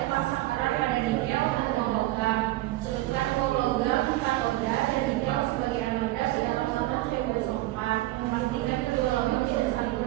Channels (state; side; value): quieter; left; 17.4 dB